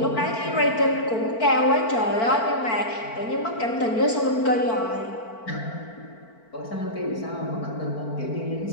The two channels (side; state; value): right; late; 4.5 ms